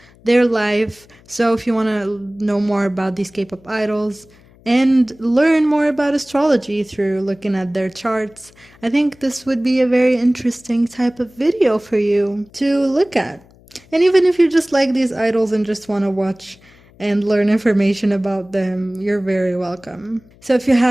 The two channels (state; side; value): noise; left; hum, 27 dB below the sound